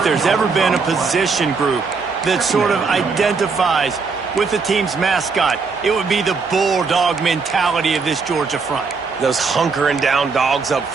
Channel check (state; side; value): quieter; left; 4.8 dB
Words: there's ever been a position group that sort of identifies with the team's mascot, it would be the bulldog mentality of this Georgia front. Those hunkering down dogs up